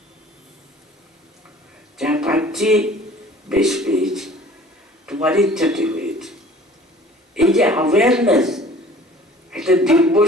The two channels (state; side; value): normal; both; correlation 0.49